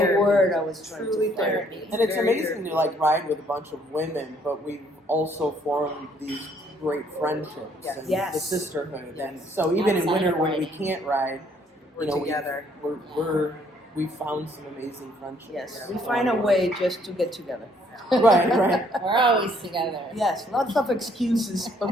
word I was trying Truly to find. therapy. And it's Very amazing to like ride with a bunch of women, but we've also formed these great friendships Yes. and Yes. the sisterhood. Yes. And so even in Outside winter of when we riding. can't ride, We're together. we've found some amazing friendships. Yes, we find a way just to get together. right. We're always together. Yes, lots of excuses,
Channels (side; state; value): both; normal; correlation 0.65